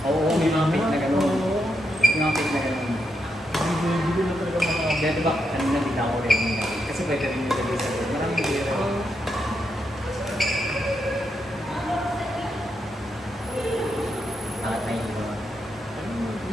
Oo, may mga pick na gano'n. May mga pick na gano'n. Hindi ko na talaga makakabit. Kaya diba, kanina bigla ko rin nila. Kasi pwede rin yung lagay sa doon. Maraming hindi rin. Tatay nyo.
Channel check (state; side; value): normal; both; correlation 0.82